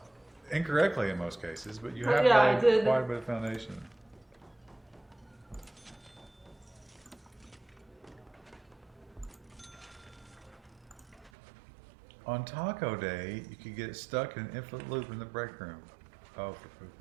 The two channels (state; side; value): drops out; left; at 11.3 s